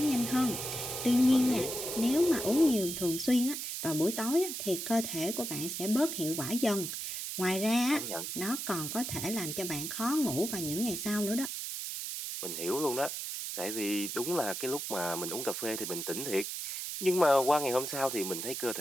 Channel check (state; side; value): noise; right; hiss, 5 dB below the sound